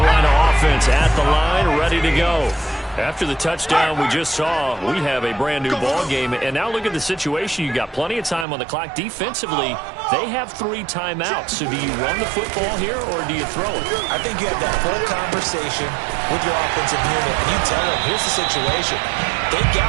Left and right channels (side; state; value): left; drops out; at 8.5 s